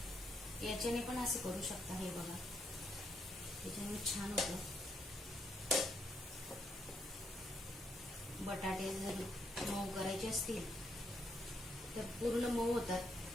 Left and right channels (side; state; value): both; normal; correlation 0.76